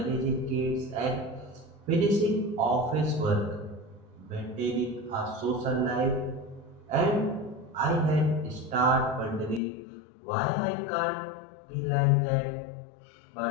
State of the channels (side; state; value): right; drops out; at 9.6 s